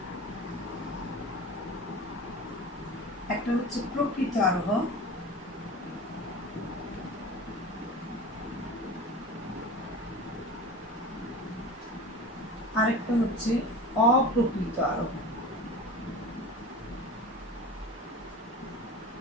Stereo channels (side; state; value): both; normal; correlation 0.34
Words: একটা হচ্ছে প্রকৃত আরোহ, আরেকটা হচ্ছে অপ্রকৃত আরোহ।